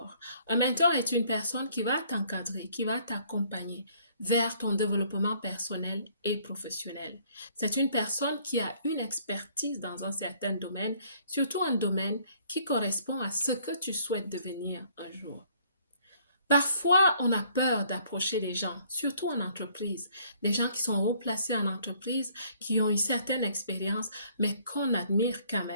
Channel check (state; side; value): inverted; both; correlation -0.62